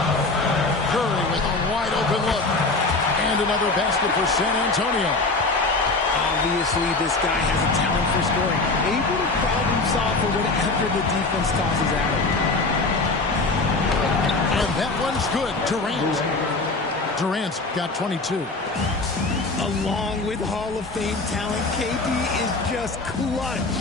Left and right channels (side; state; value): right; quieter; 3.4 dB